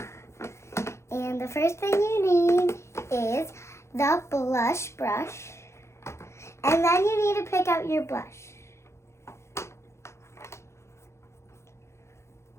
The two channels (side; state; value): right; late; 0.13 ms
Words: And the first thing you need is the blush brush. And then you need to pick out your blush.